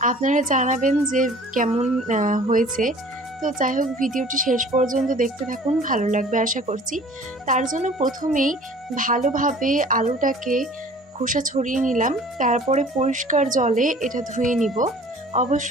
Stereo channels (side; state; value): both; normal; correlation 0.48